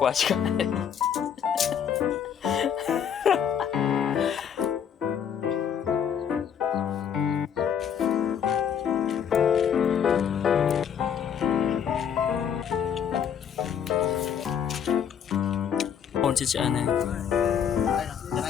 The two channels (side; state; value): right; quieter; 8.2 dB